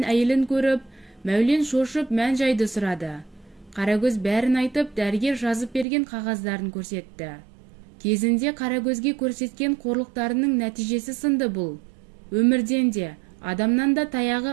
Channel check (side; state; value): left; drops out; at 5.9 s